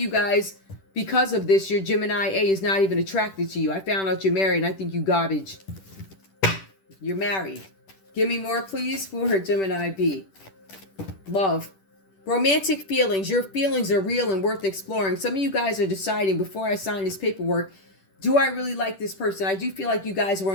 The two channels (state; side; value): late; right; 10 ms